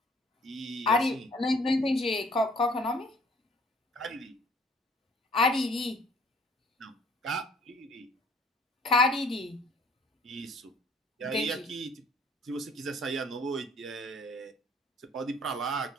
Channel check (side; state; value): both; normal; correlation 0.58